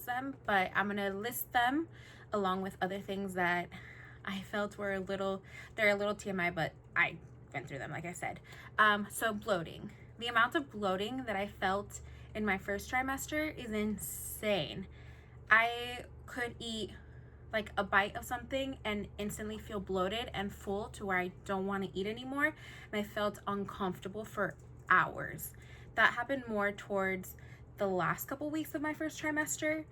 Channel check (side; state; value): both; identical; correlation 1.00